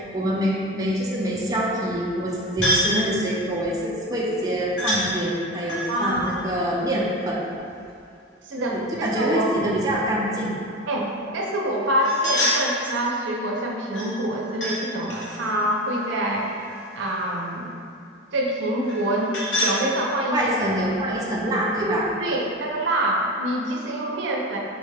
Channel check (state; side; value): normal; both; correlation 0.24